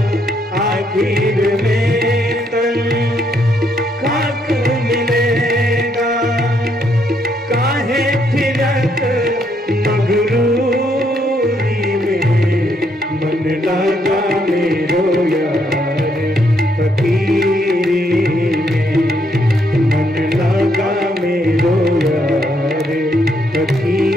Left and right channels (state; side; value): normal; both; correlation 0.73